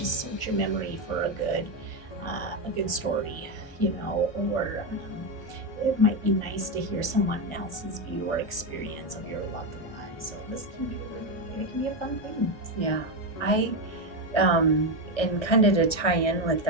search your memory for a good story, or it might be nice to hear someone else's view or experience of your loved one. So this can be it can be a fun thing. Yeah. And kind of to tie in with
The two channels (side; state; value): right; late; 1.4 ms